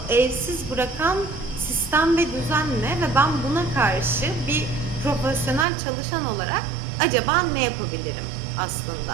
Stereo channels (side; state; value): left; drops out; at 5.7 s